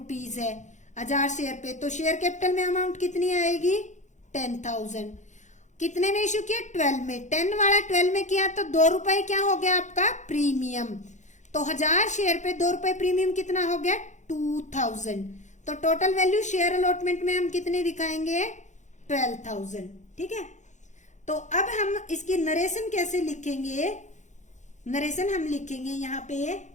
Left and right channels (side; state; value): right; late; 0.35 ms